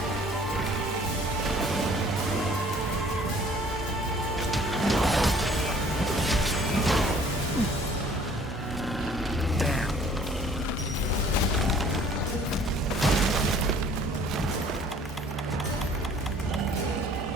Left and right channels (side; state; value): both; normal; correlation 0.55